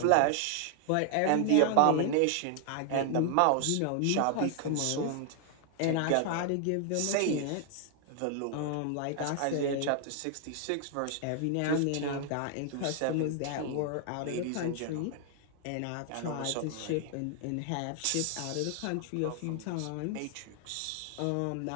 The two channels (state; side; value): different; both; correlation 0.00